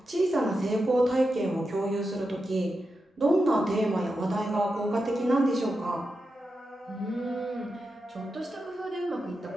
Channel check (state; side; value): normal; both; correlation 0.89